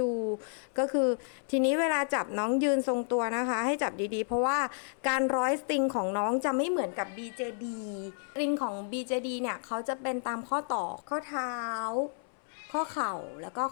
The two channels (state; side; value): silent; right; 57 dB below the other